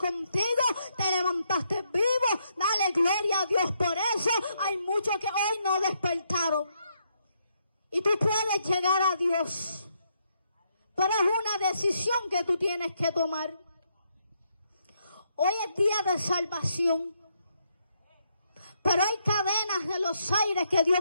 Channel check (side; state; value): both; inverted; correlation -0.76